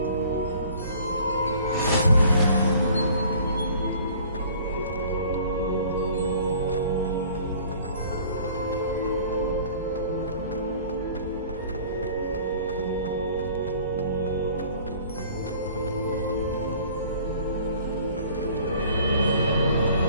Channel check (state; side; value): inverted; both; correlation -0.51